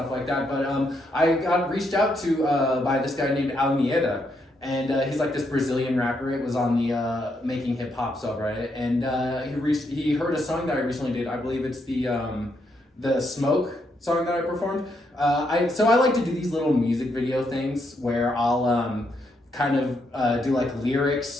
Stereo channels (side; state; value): both; normal; correlation 0.78